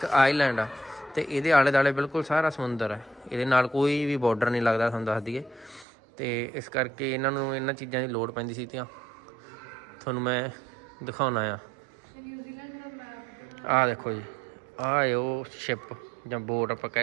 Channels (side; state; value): left; drops out; at 5.9 s